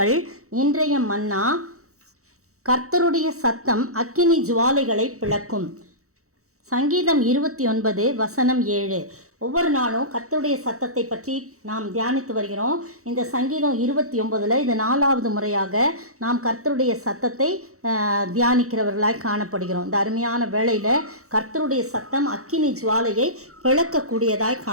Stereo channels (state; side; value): late; left; 0.64 ms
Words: இன்றைய மன்னா, கர்த்தருடைய சத்தம் அக்கினி ஜுவாலைகளை பிளக்கும். சங்கீதம் 29 வசனம் 7. ஒவ்வொரு நாளும் கர்த்தருடைய சத்தத்தை பற்றி நாம் தியானித்து வருகிறோம். இந்த சங்கீதம் 29 இது 4வது முறையாக நாம் கர்த்தருடைய சத்தத்தை தியானிக்கிறவர்களாய் காணப்படுகிறோம். இந்த அருமையான வேளையில் கர்த்தருடைய சத்தம் அக்கினி ஜுவாலையை பிளக்கக்கூடியதாய்